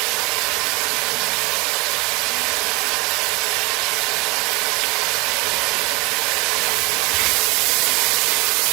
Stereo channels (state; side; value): quieter; left; 25.9 dB